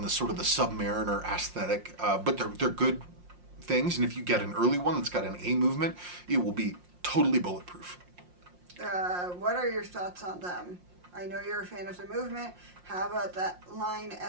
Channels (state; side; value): late; left; 5.6 ms